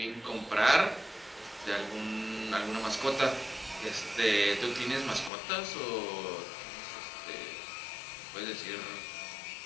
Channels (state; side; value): drops out; right; at 5.3 s